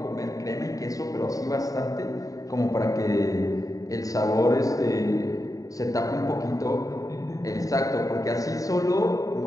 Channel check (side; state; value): right; late; 0.17 ms